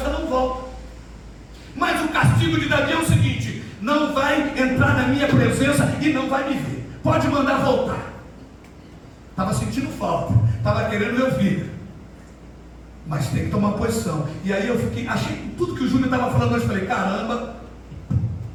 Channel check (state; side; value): identical; both; correlation 1.00